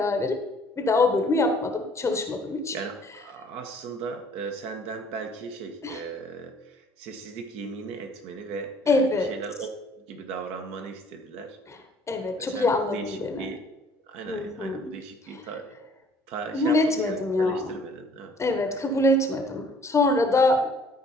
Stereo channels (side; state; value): both; normal; correlation 0.57